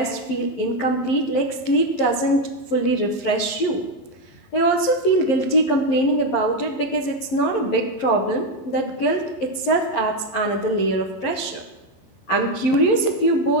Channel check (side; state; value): right; late; 11 ms